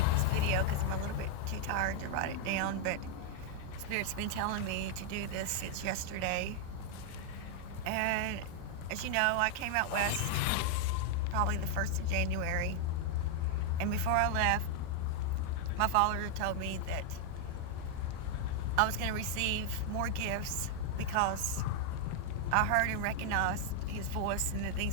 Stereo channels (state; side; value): different; both; correlation 0.00